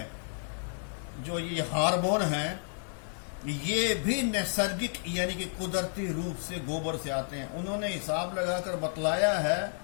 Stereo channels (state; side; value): silent; right; digital silence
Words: जो ये हार्मोन हैं, ये भी नैसर्गिक यानी कि कुदरती रूप से गोबर से आते हैं। उन्होंने हिसाब लगाकर बतलाया है